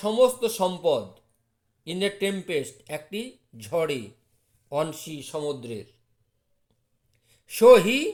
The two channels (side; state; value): both; identical; correlation 1.00